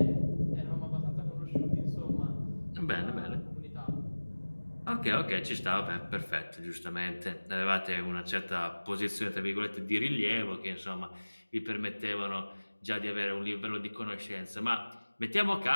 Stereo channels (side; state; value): both; inverted; correlation -1.00